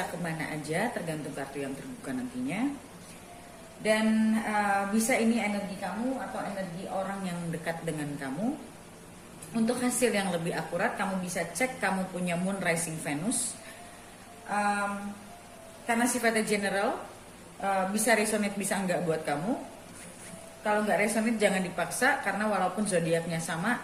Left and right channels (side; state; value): both; identical; correlation 1.00